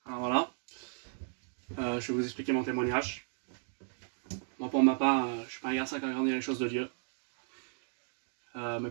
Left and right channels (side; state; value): left; silent; digital silence